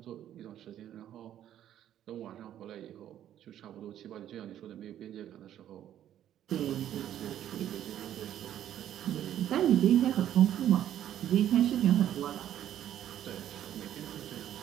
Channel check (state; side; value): quieter; left; 11.2 dB